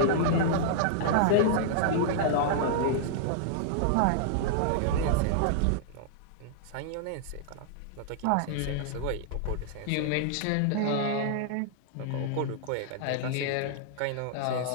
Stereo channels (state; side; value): different; both; correlation -0.01